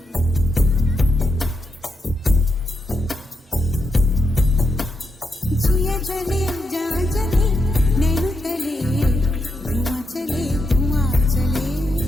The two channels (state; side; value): normal; both; correlation 0.84